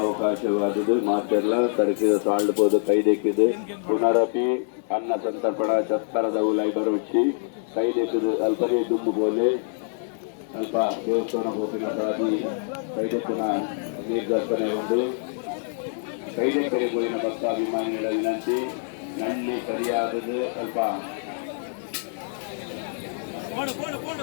ಮಾತೆಲ್ಲ ತರಕಿದ ಸಾಳ್ಬೋದು ಕೈದೆಕ್ಕಿದ್ದು ಪುನರಪಿ ಅನ್ನ ಸಂತರ್ಪಣ ಚತ್ತರದ ಉಲೈ ಬರುಚ್ಚಿ ಕೈದೆಕ್ಕಿದು ಅಲ್ಪನೇ ದುಮ್ಮು ಬೋಲೆ ಅಲ್ಪ ದೇವಸ್ಥಾನ ಹೋಗಿನ ಸಾಧಿ ಕೈದೆಕ್ಕಿನ ನಿರ್ದರ್ಶನ ಉಂಟು ಕೈದೆಕ್ಕರೆ ಹೋಗಿನ ಭಕ್ತಾಭಿಮಾನಿಗಳ ವಿನಂತಿ ನನ್ನಿ ಸರಿಯಾದದ್ದು ಅಲ್ಪ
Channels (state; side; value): silent; right; 58 dB below the other